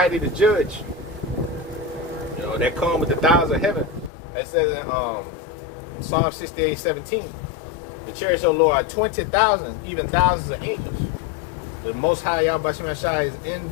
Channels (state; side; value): drops out; right; at 4.1 s